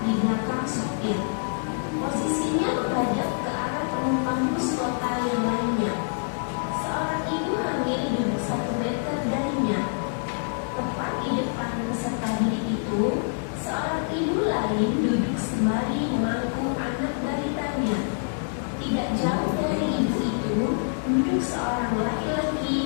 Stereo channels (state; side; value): silent; right; digital silence